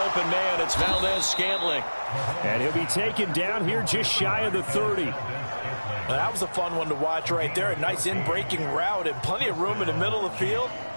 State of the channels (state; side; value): inverted; both; correlation -1.00